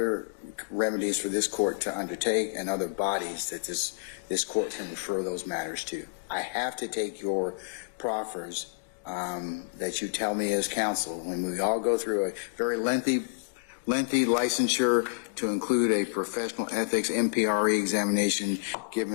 remedies for this court to undertake and other bodies that this court can refer those matters to. I have to take your proffers that you tell me as counsel, when we all go through a very lengthy licensure to include a professional ethics MPRE examination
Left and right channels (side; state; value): right; quieter; 38.8 dB